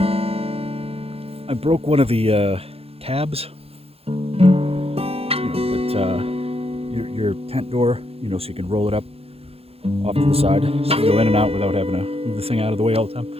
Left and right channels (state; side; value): late; left; 0.29 ms